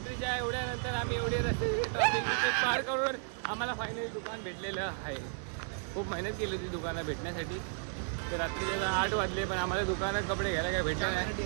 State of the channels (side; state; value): left; silent; 55 dB below the other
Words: एवढ्यानंतर आम्ही एवढे रस्ते ट्रॅफिक पार करून आम्हाला फायनली दुकान भेटलेलं आहे. खूप मेहनत केली होती दुकानं भेटण्यासाठी. तर रात्रीच्या 8 वाजले, पण आम्हाला दुकानात कपडे घ्यायला काही भेटले नाही.